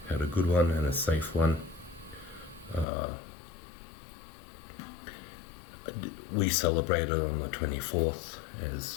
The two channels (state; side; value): drops out; right; at 2.9 s